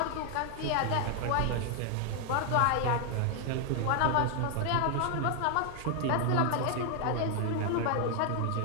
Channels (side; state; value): both; different; correlation 0.00